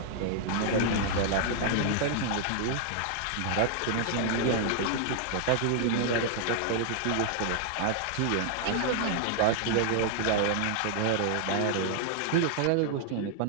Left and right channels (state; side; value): different; both; correlation 0.00